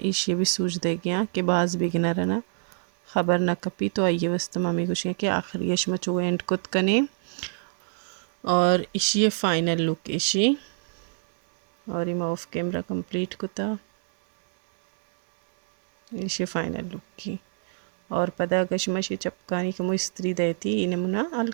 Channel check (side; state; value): left; silent; 61 dB below the other